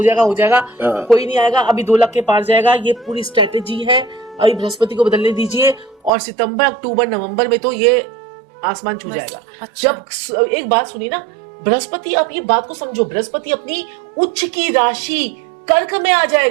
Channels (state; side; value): drops out; left; at 6.1 s